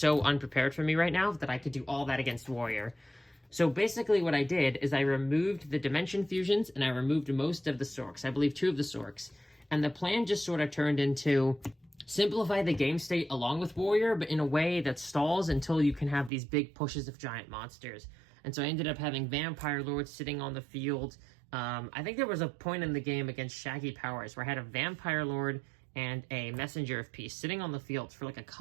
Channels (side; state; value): left; drops out; at 16.3 s